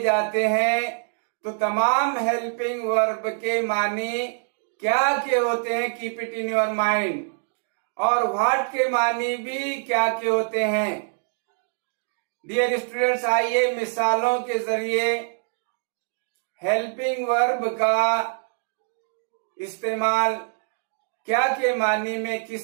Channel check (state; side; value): silent; left; digital silence